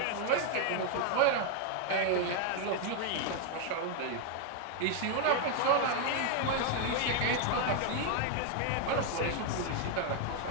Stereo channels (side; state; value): both; different; correlation 0.01